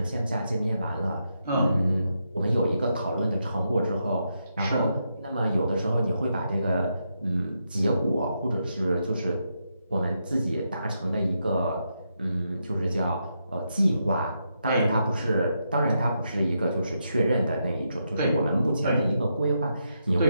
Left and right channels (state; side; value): inverted; both; correlation -0.82